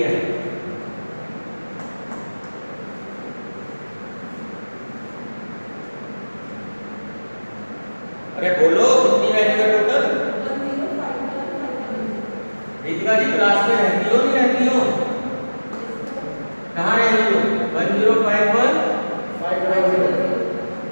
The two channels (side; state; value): both; inverted; correlation -1.00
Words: अरे बोलो कितनी वैल्यू है टोटल? दीपिका जी क्लास में रहती हो नहीं रहती हो? कहाँ रहती हो? 1051